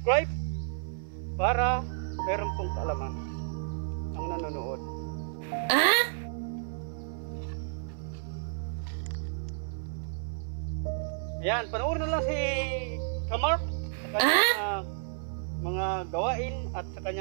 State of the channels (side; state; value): left; silent; 57 dB below the other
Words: para meron pong kaalaman ang nanonood. Ayan, panoorin na lang si Kamark sa kanyang mga gawain at sa